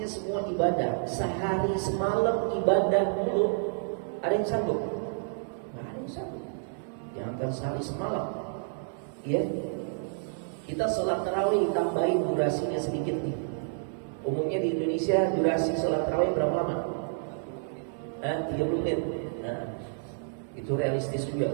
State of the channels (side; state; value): left; silent; 58 dB below the other